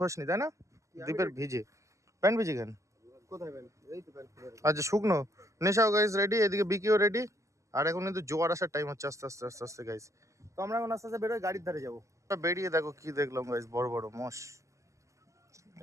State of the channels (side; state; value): left; late; 0.15 ms